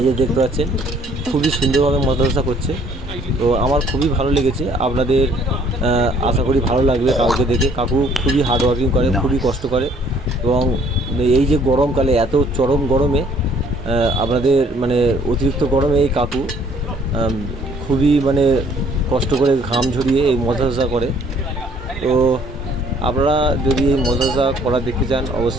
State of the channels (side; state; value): both; normal; correlation 0.60